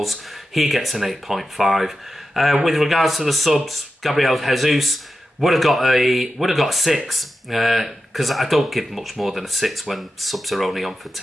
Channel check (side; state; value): both; normal; correlation 0.91